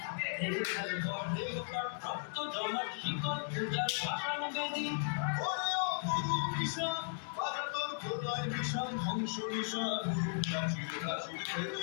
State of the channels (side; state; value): right; silent; digital silence